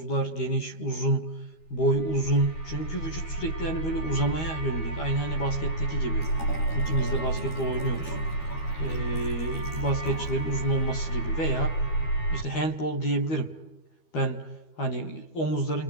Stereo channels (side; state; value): right; late; 13 ms